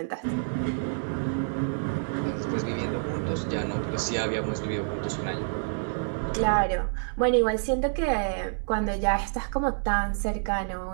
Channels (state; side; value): silent; left; 59 dB below the other